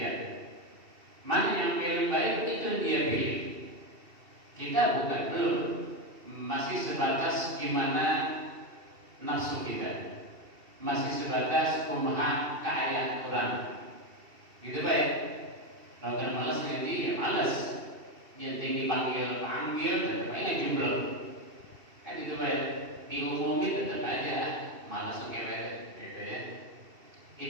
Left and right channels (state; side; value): late; left; 2.7 ms